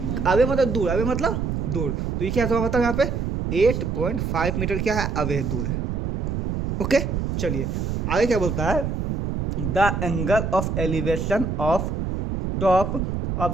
अवे मतलब दूर, अवे मतलब दूर, तो ये क्या हुआ बताओ यहाँ पे 8.5 मीटर क्या है, अवे है, दूर है। ओके, चलिए आगे क्या बोलता है, the angle of elevation of top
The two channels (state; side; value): noise; right; rumble, 2 dB below the sound